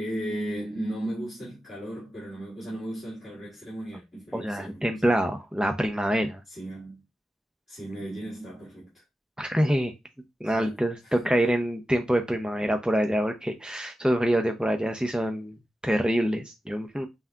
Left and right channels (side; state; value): both; normal; correlation 0.92